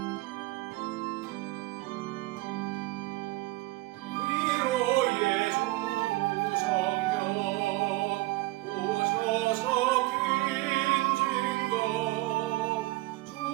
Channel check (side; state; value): left; quieter; 20.4 dB